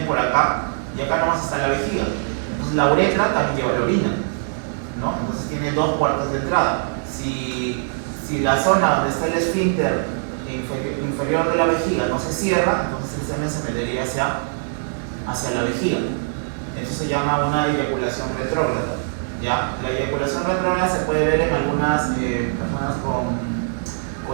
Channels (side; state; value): left; silent; digital silence